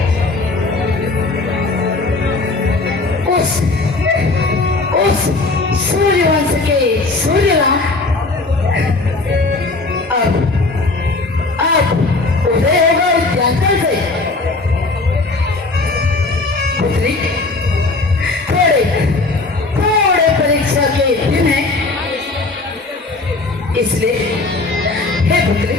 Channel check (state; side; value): quieter; right; 3.4 dB